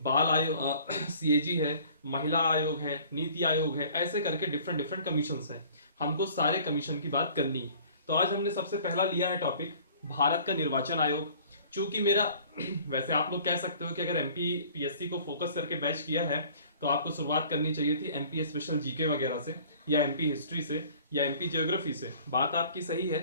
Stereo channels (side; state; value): both; inverted; correlation -0.51